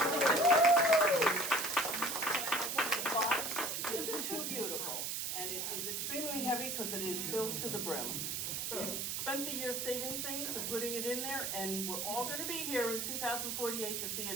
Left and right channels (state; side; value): noise; right; hiss, 2 dB below the sound